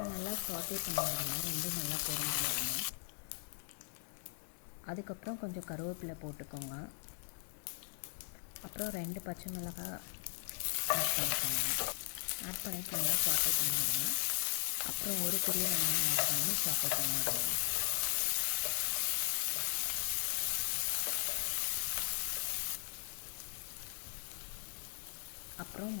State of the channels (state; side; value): silent; right; digital silence